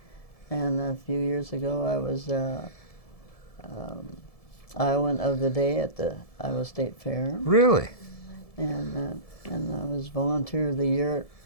And a few years ago, I was Iowan of the Day at the Iowa State Fair. Really? And I was Volunteer of the Year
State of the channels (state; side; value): late; right; 1.7 ms